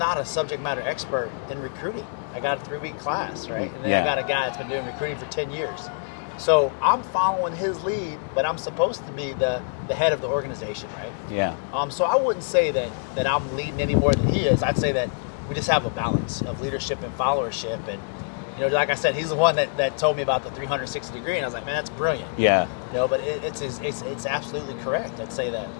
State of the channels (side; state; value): right; silent; digital silence